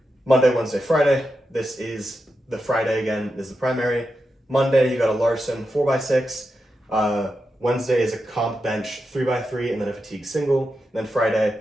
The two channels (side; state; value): both; normal; correlation 0.88